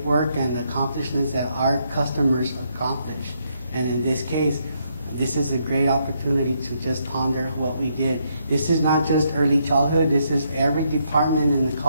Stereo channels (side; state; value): both; inverted; correlation -0.76